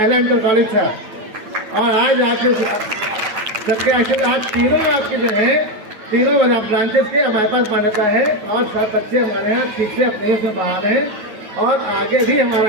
इंटर कॉलेज था। और आज आपके सबके आशीर्वाद तीनों आपके जो है, तीनों ब्रांचेस के हमारे पास मान्यता है और सब बच्चे हमारे यहाँ ठीक से अपने उसमें बाहर हैं। और आगे भी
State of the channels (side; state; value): left; late; 8.9 ms